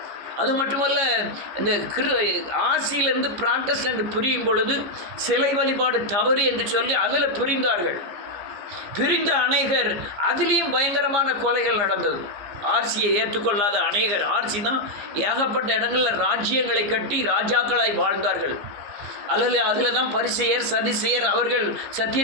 அது மட்டுமல்ல, இந்த ஆசியிலிருந்து பிராட்டஸ்டன்ட் பிரியும் பொழுது சிலை வழிபாடு தவறு என்று சொல்லி அதில் பிரிந்தார்கள். பிரிந்த அநேகர் அதிலையும் பயங்கரமான கொலைகள் நடந்தது. ஆர்சியை ஏற்றுக்கொள்ளாத அநேகர், ஆர்சி தான் ஏகப்பட்ட இடங்களில் ராஜ்யங்களை கட்டி ராஜாக்களாய் வாழ்ந்தார்கள். அதில் தான் பரிசேயர், சதிசேயர், அவர்கள்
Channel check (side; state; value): left; late; 15 ms